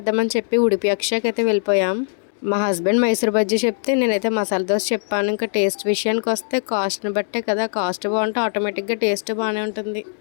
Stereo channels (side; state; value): right; silent; digital silence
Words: చెప్పి ఉడిపి అక్షయకి అయితే వెళ్ళిపోయాం. మా హస్బెండ్ మైసూర్ బజ్జీ చెప్తే నేనైతే మసాలా దోశ చెప్పాను. ఇంకా టేస్ట్ విషయానికి వస్తే కాస్ట్ని బట్టే కదా, కాస్ట్ బాగుంటే ఆటోమేటిక్గా టేస్ట్ బాగానే ఉంటుంది.